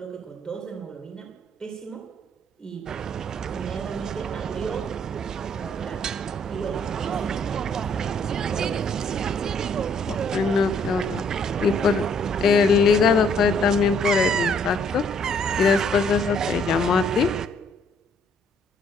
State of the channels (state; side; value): normal; both; correlation 0.65